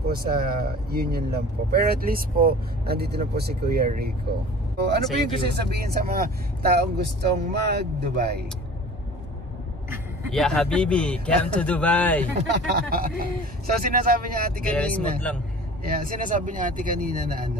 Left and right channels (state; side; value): normal; both; correlation 0.42